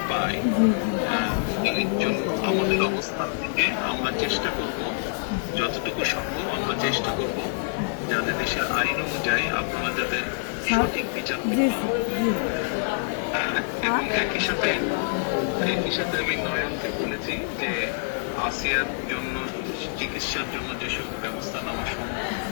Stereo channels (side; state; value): right; silent; digital silence